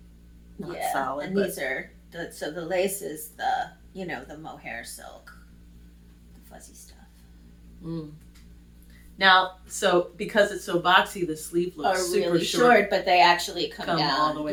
not solid, and these are, so the lace is the mohair silk, the fuzzy stuff. Now, so because it's so boxy, the sleeve looks super really short, but they actually come down all the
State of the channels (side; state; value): both; identical; correlation 1.00